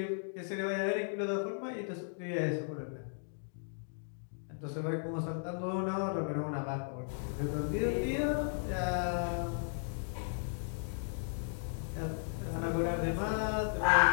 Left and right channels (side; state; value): right; silent; digital silence